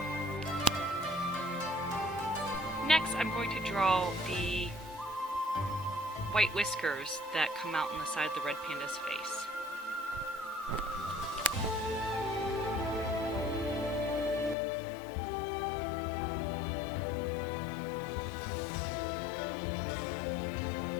Next, I'm going to draw the white whiskers that come out on the side of the red panda's face.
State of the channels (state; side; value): drops out; right; at 14.6 s